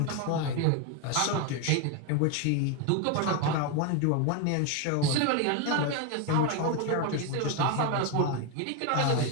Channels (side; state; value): both; different; correlation 0.02